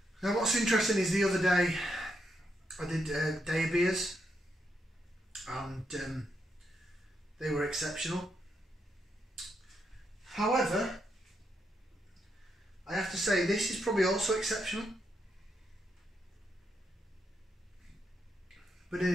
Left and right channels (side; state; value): both; normal; correlation 0.80